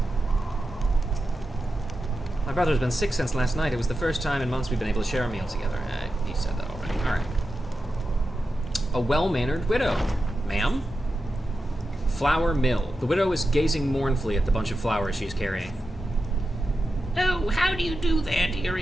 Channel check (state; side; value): normal; both; correlation 0.90